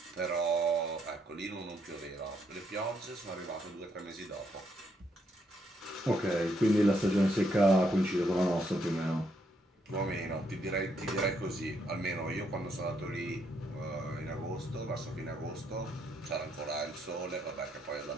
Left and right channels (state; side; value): normal; both; correlation 0.75